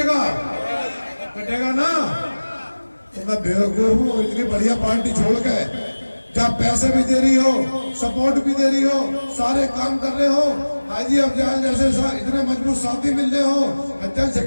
कटेगा ना। तो मैं बेवकूफ हूँ, इतनी बढ़िया पार्टी छोड़ के, जब पैसे भी दे रही हो, सपोर्ट भी दे रही हो, सारे काम कर रहे हो, हाजी अफजाल जैसे इतने मजबूत साथी मिल रहे हो, हज्जाज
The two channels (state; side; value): inverted; both; correlation -1.00